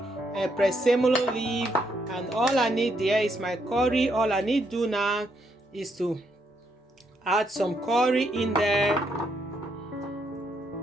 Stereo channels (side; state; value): both; normal; correlation 0.76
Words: presemolo leaf, and all I need there is my curry. All I need to do now is to add some curry in there,